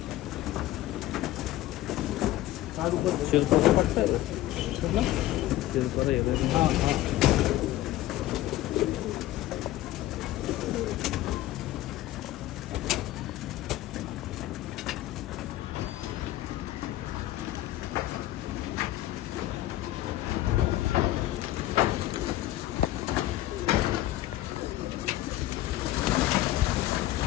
शिरपाचा पट्टा आहे शिरपाचा हिरव्या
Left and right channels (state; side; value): quieter; right; 15.1 dB